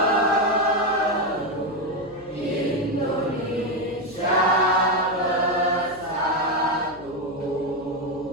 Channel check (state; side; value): noise; left; hum, 23 dB below the sound